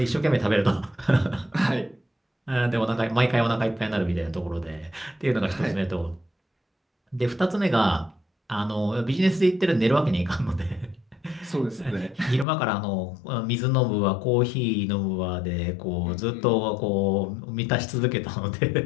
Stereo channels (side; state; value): right; drops out; at 12.5 s